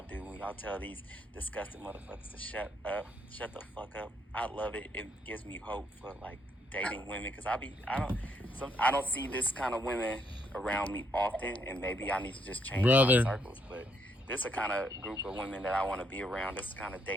do. When y'all tell these disgusting motherfuckers to shut the fuck up. I love it. It gives me hope for like dating women because I don't see this kind of women around me often, and maybe I need to just change Brother. my circles. But this is a kind of group of women that I want to be around. This is the kind of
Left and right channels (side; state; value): both; normal; correlation 0.73